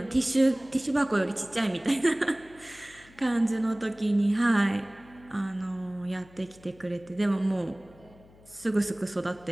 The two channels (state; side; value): noise; left; hum, 25 dB below the sound